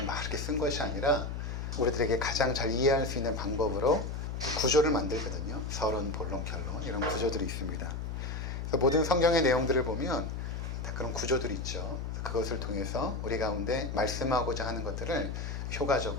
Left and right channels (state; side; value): noise; left; hum, 4 dB below the sound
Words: 막 이렇게 쓴 것이 아니라 우리들에게 가장 잘 이해할 수 있는 방법으로 구조를 만들거든요. 서론, 본론, 결론 이런 구조들이 있습니다. 그래서 모든 성경의 내용들을 보면 다 그런 구조들이 있죠. 그것을 통해서 우리 가운데 말씀하고자 하는 것들을